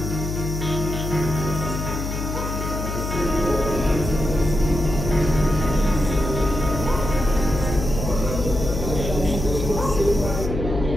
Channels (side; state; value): left; noise; hum, 4 dB below the sound